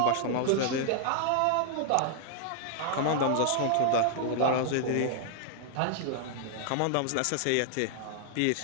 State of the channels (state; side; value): different; both; correlation -0.01